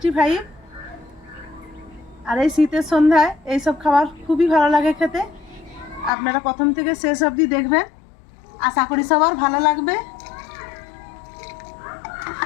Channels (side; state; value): right; drops out; at 6.1 s